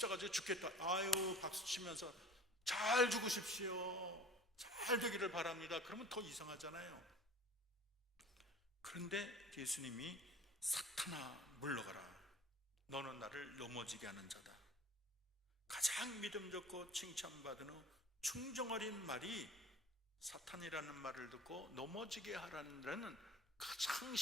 죽겠다. 아유 박수 치면서 잘 죽으십시오, 잘 되기를 바랍니다. 그러면 더 이상하잖아요. 그런데 예수님이 사탄아 물러가라. 너는 나를 넘어지게 하는 자다. 가장 믿음 좋고 칭찬받은 후 충정 어린 말이 사탄이라는 말을 듣고 넘어지게 하라는 가장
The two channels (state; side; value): normal; both; correlation 0.42